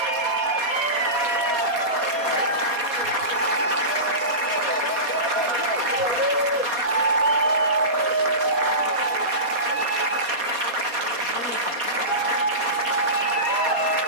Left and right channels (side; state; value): left; late; 4.2 ms